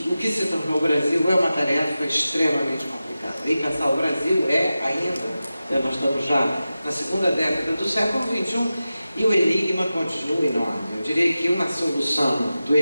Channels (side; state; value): both; inverted; correlation -0.94